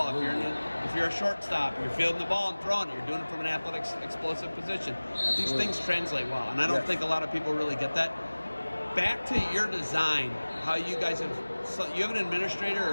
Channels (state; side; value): inverted; both; correlation -1.00